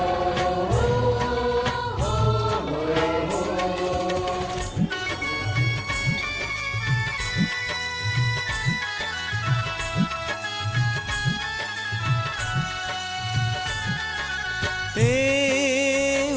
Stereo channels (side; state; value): both; identical; correlation 1.00